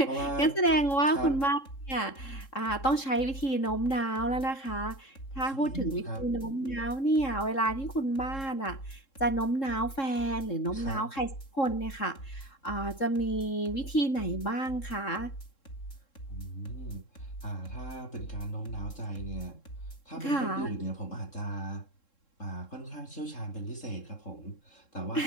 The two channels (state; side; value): late; right; 3.7 ms